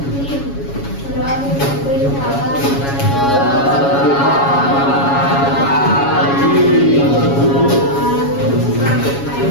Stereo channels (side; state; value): right; late; 7.2 ms